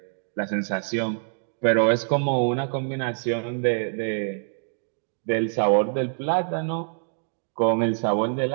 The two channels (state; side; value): silent; left; digital silence